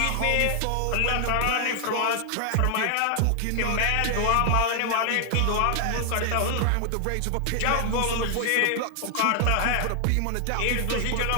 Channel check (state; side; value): different; both; correlation 0.00